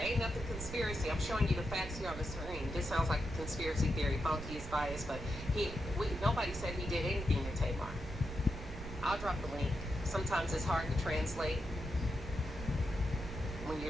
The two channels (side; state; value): right; noise; rumble, 9 dB below the sound